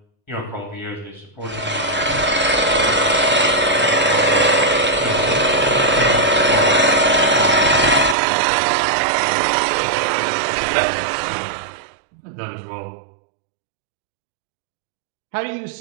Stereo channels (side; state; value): left; drops out; at 8.2 s